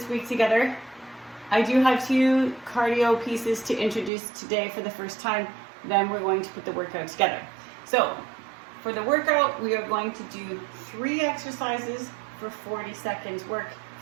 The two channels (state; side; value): drops out; left; at 4.1 s